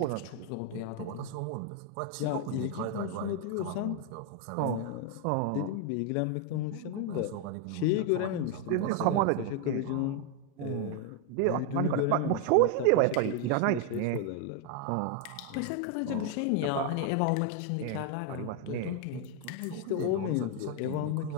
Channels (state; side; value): different; both; correlation 0.00